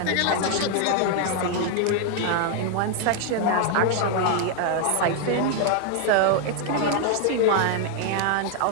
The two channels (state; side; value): different; both; correlation 0.00